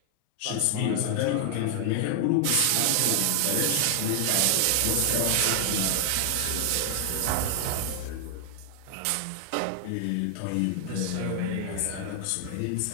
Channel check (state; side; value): different; both; correlation 0.00